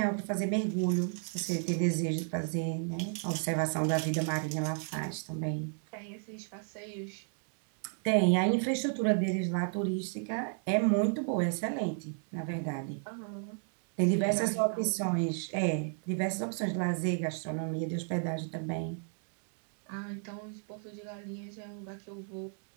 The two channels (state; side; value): silent; left; 56 dB below the other